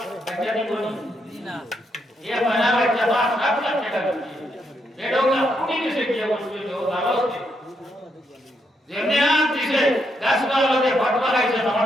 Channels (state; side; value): normal; both; correlation 0.78